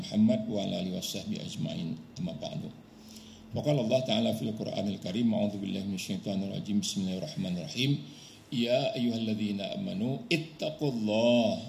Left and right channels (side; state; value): both; identical; correlation 1.00